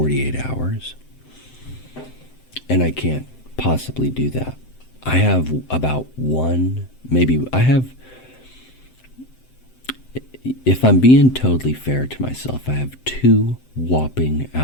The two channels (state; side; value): late; right; 7.8 ms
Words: hours. And I can't possibly do that. I have about if I'm being totally fair to myself, I have 2 whopping